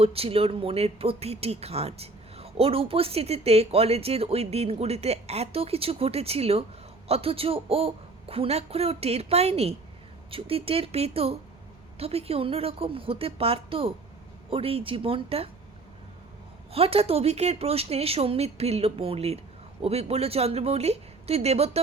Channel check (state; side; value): quieter; left; 3.4 dB